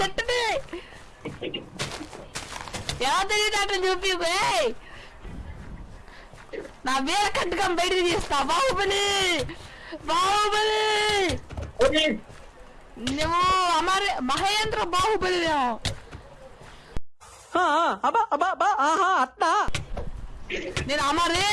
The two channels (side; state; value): both; identical; correlation 1.00